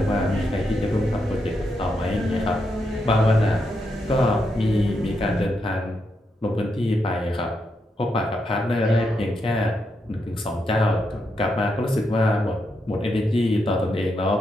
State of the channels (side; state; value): both; normal; correlation 0.82